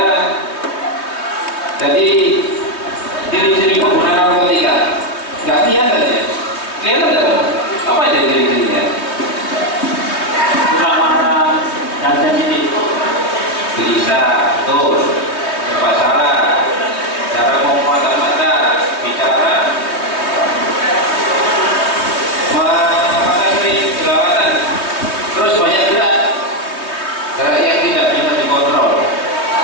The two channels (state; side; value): late; right; 3.2 ms